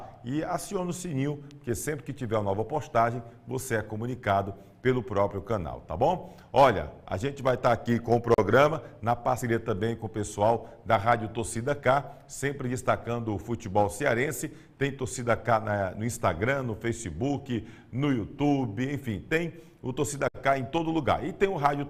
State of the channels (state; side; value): identical; both; correlation 1.00